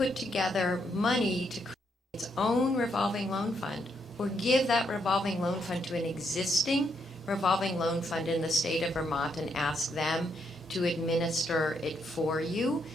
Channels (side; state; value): both; normal; correlation 0.76